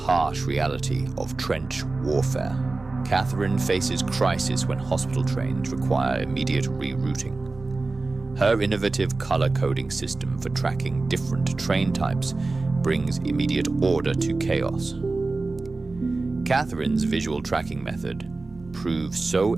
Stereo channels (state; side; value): quieter; left; 3.5 dB